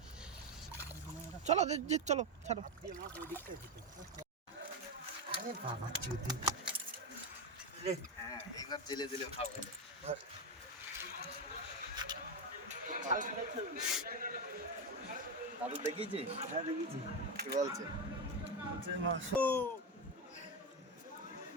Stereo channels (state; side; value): normal; both; correlation 0.12